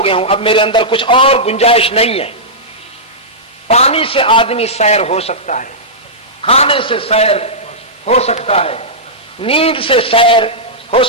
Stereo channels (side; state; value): both; normal; correlation -0.13